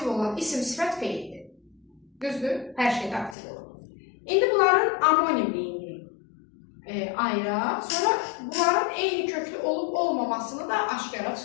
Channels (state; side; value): drops out; right; at 3.4 s